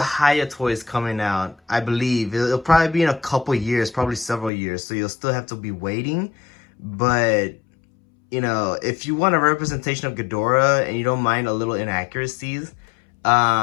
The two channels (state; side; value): drops out; right; at 4.5 s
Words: toys coming out, I believe. It'll probably be in a couple years, probably several years. So you'll still have to be waiting. But, you know, if you want a representation of Ghidorah and you don't mind a little inaccuracies,